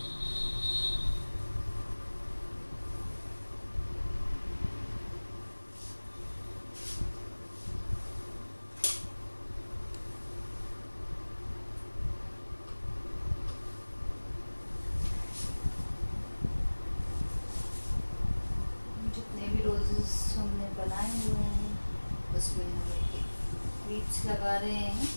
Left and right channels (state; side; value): inverted; both; correlation -1.00